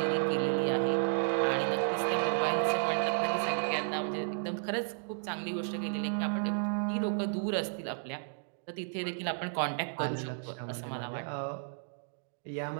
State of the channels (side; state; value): left; silent; digital silence